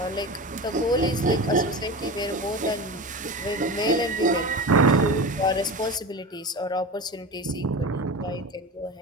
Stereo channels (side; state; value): both; normal; correlation 0.28